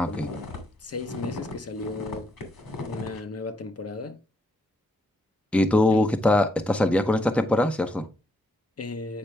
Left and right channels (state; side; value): normal; both; correlation 0.76